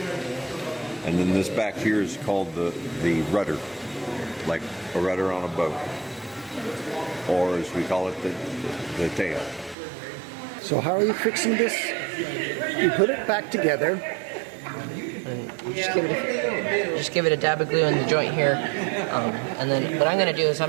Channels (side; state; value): left; drops out; at 9.8 s